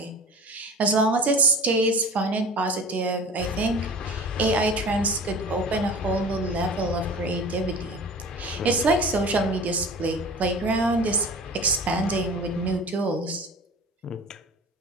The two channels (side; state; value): both; normal; correlation 0.38